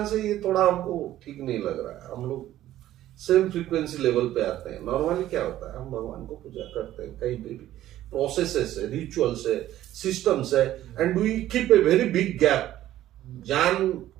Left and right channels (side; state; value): left; quieter; 13.5 dB